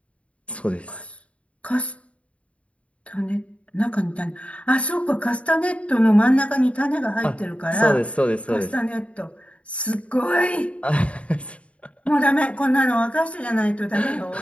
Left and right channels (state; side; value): late; right; 0.063 ms